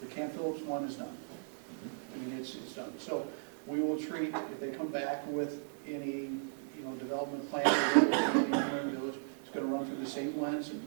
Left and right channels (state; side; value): silent; left; digital silence